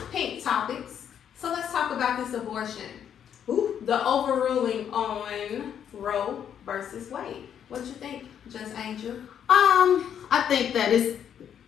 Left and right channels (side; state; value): right; quieter; 8.9 dB